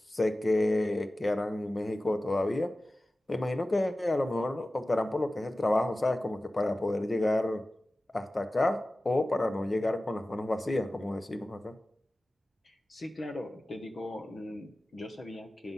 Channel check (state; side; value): normal; both; correlation 0.96